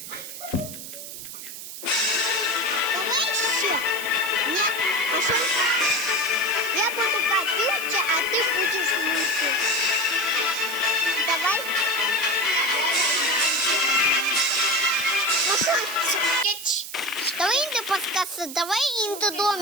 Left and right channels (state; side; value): noise; right; hiss, 10 dB below the sound